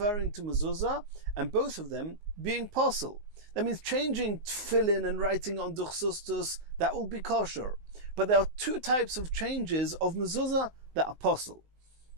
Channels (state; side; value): late; left; 19 ms